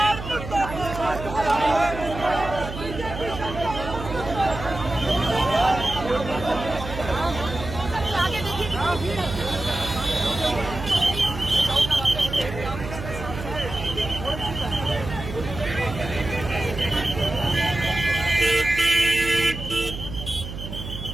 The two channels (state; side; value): noise; right; hum, 9 dB below the sound